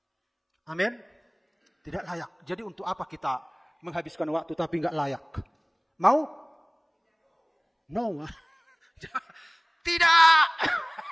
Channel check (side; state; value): both; identical; correlation 1.00